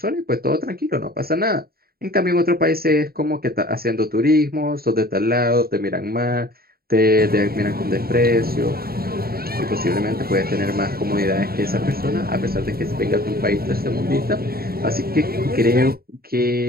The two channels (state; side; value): late; left; 0.44 ms